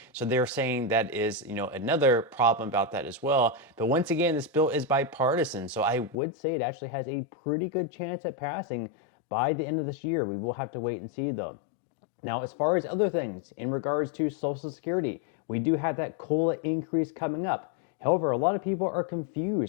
So they're saying that is, another problem about that as well. But once again, this bill is bipartisan. So I would say it actually has a pretty good chance at passing by the end of this year. We will have to wait and see though. Now, as far as other things in regards to Social Security, we do have that COLA increase coming up. However, a lot of people are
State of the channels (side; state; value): right; drops out; at 6.2 s